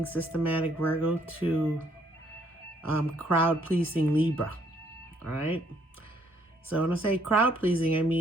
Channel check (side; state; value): both; normal; correlation 0.68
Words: systematic Virgo, to crowd-pleasing Libra, all right? So when I say crowd-pleasing, I